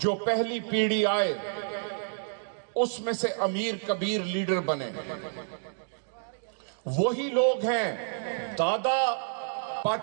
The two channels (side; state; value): left; silent; digital silence